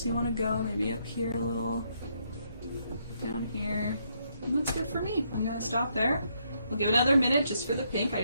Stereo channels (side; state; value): both; inverted; correlation -0.75